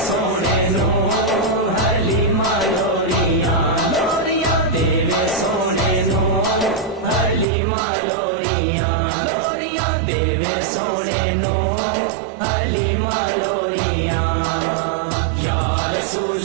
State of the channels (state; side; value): drops out; left; at 7.5 s